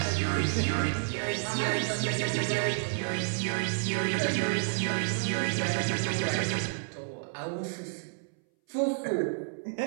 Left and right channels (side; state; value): left; silent; 58 dB below the other